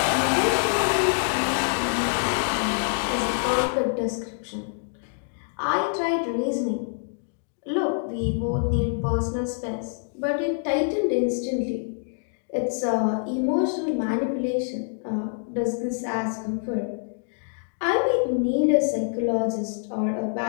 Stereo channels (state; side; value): silent; right; digital silence